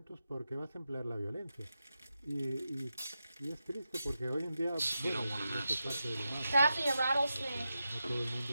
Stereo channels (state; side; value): inverted; both; correlation -0.89